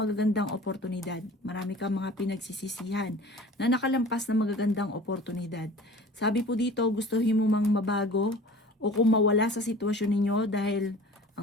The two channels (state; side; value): normal; both; correlation 0.43